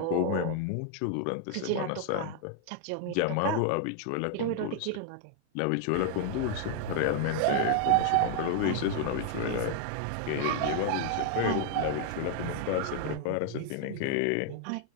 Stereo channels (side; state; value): both; different; correlation 0.00